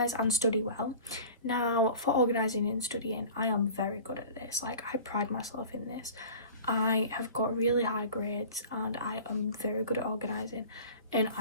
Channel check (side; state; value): both; inverted; correlation -0.40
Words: and study well. Now, for organising and studying, I am very good at this. Like, I pride myself in this. I have got really high grades, and I am very good at organising, and